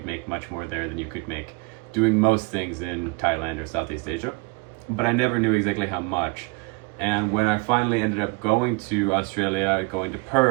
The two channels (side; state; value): left; quieter; 28.4 dB